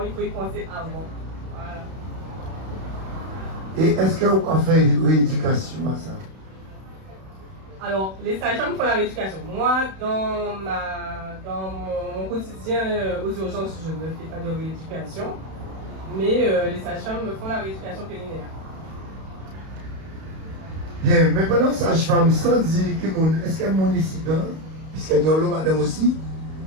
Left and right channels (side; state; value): left; late; 31 ms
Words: il faut y penser avant. Voilà. Et est-ce qu'on fait une rééducation à ça? Alors, les sages-femmes font la rééducation. Moi, dans mon quotidien aux urgences, je ne fais pas de rééducation. Mais les sages-femmes me font la rééducation périnéale. Bien, mais pendant sage-femme, sans dire que est-ce qu'elle est mon incident, puisqu'elle y a l'eau, madame aussi,